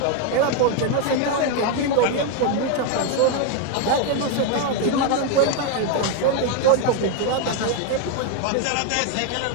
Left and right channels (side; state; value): both; different; correlation 0.01